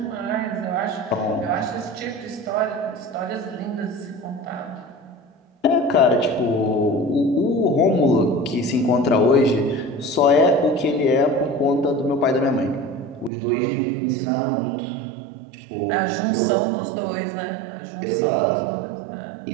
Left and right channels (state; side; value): drops out; left; at 13.3 s